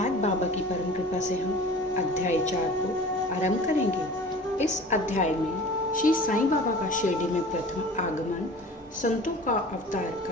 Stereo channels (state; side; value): normal; both; correlation 0.41